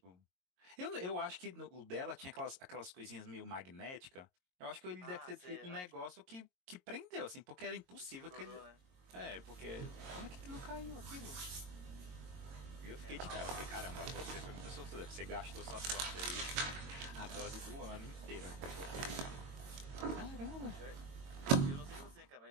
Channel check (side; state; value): left; late; 22 ms